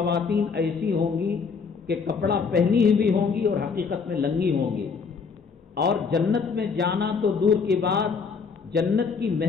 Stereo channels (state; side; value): quieter; right; 5.4 dB